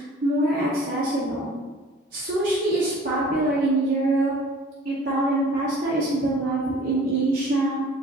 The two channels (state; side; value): normal; both; correlation 0.49